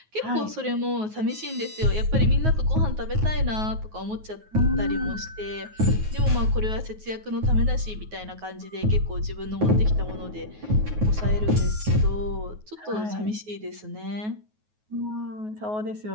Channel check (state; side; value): late; left; 9.4 ms